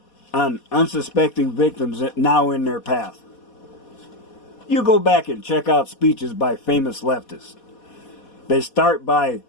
on unsuspecting victims now in their path. You go back and check out speeches by famous leftists. They start by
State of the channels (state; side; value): late; right; 4.2 ms